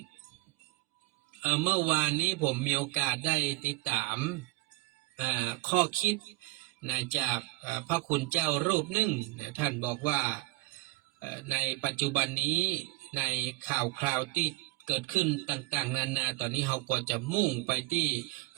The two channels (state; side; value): quieter; left; 20.7 dB